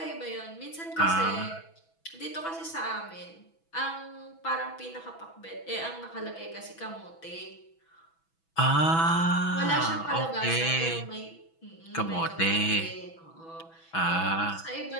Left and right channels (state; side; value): late; right; 6.1 ms